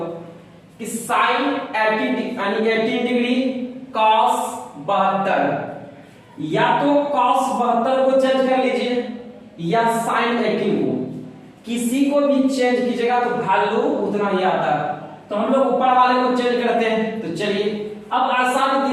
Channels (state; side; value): identical; both; correlation 1.00